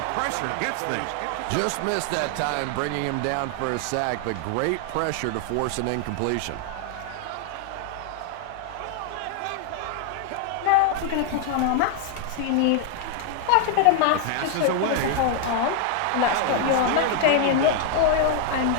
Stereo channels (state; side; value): different; both; correlation 0.00